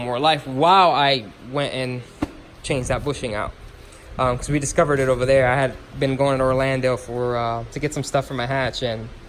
more life while I went and changed that bushing out. Because we discovered it over there. I had been going to Orlando to get some stuff for my hatch, and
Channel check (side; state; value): both; identical; correlation 1.00